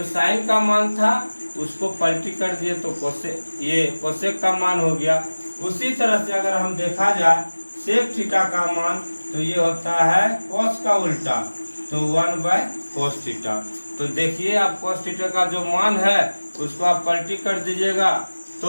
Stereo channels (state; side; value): inverted; both; correlation -1.00